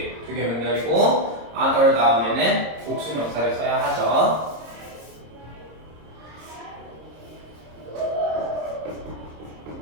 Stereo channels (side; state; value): left; late; 26 ms